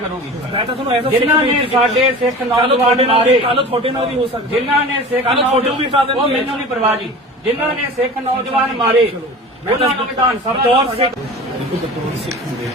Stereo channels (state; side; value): normal; both; correlation 0.36